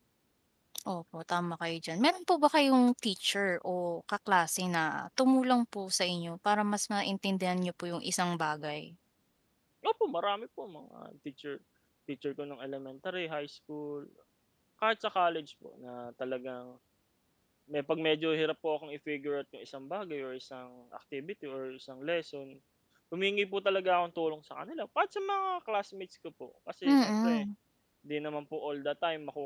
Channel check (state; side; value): identical; both; correlation 1.00